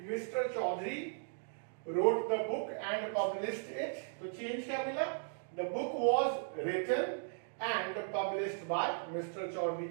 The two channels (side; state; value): left; silent; digital silence